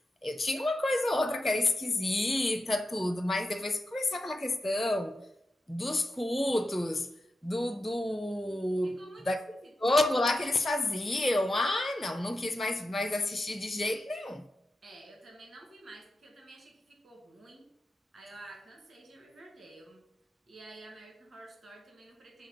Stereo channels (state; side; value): normal; both; correlation 0.89